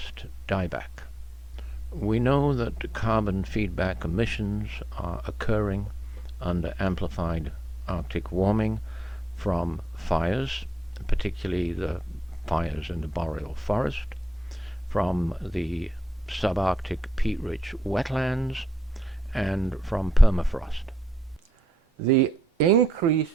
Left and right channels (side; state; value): both; normal; correlation 0.83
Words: dieback. We know that carbon feedback emissions are occurring under amplified Arctic warming from fires, particularly the fires in the boreal forest, from the subarctic peat-rich wetlands, and from permafrost. The increase